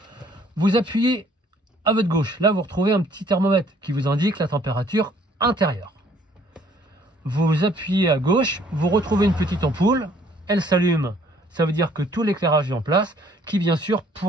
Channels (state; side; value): normal; both; correlation 0.61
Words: Vous appuyez à votre gauche. Là, vous retrouvez un petit thermomètre qui vous indique la température intérieure. Vous appuyez à gauche, vous retrouvez une petite ampoule, elle s'allume, ça veut dire que tout l'éclairage est en place, qui bien sûr